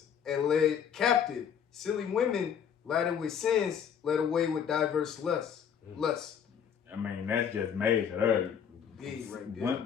and led captive silly women laden with sins, led away with diverse lusts. I mean, that's just major. Big right there.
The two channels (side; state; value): right; quieter; 8.0 dB